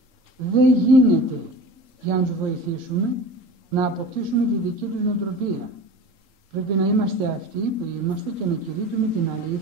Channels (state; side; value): late; left; 3.8 ms